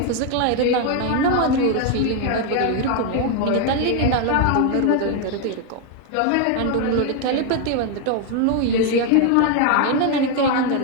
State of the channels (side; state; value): both; different; correlation 0.01